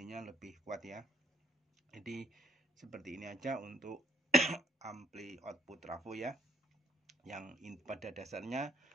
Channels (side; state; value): both; normal; correlation 0.62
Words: lebih kuat ya. Jadi seperti ini aja untuk ampli output trafo ya. Yang pada dasarnya